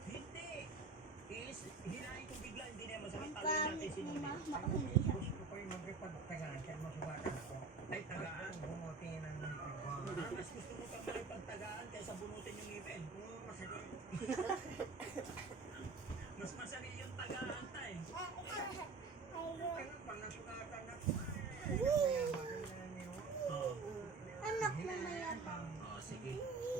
Hindi. Hinahin ko bigla, hindi na masakit. Taloy natin sinunod. Gusto ko yung mag-ipagtagaan kaya masubatan ako. Ay, tagaan. Bumuti ng Mas gusto mo pa makipagtagaan kaysa bunutin yung ngipin. masakit. Mas masakit yung tagaan tayo. Kaya pag nasugatan ako, maganda niyo. Anak na mayan. Oh, sige.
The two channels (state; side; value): quieter; left; 4.4 dB